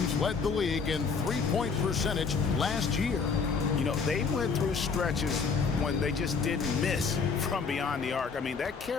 led the league in three-point percentage last year. You know, they went through stretches when they just didn't miss from beyond the arc. I mean, that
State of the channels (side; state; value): right; quieter; 5.3 dB